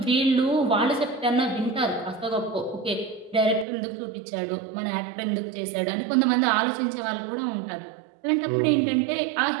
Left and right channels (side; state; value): left; drops out; at 3.7 s